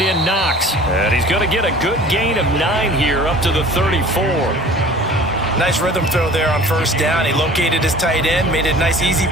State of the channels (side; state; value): both; normal; correlation 0.45